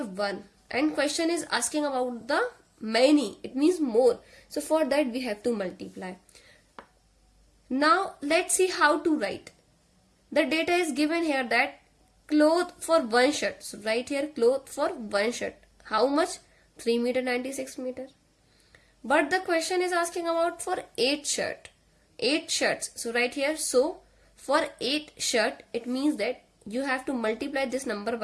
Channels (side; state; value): both; identical; correlation 1.00